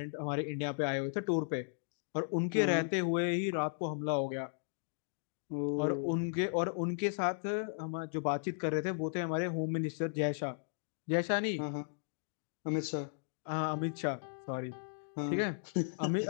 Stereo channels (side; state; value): right; silent; digital silence